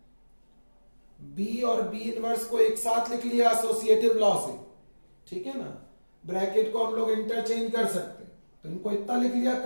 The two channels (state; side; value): inverted; both; correlation -1.00